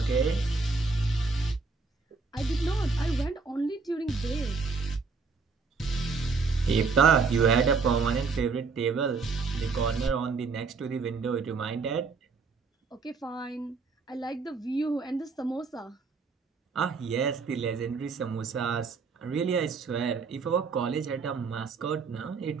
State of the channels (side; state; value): left; quieter; 4.6 dB